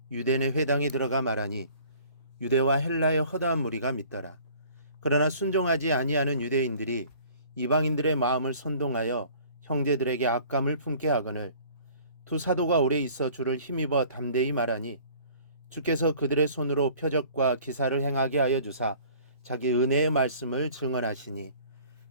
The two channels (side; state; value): both; inverted; correlation -0.51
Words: 유대네 회당에 들어가 말하니 유대와 헬라의 허다한 무리가 믿더라. 그러나 순종하지 아니하는 유대인들이 이방인들의 마음을 선동하여 형제들에게 악감을 품게 하거늘 두 사도가 오래 있어 주를 힘입어 담대히 말하니 주께서 그들의 손으로 표적과 기사를 행하게 하여 주사 자기 은혜의 말씀을 증언하시니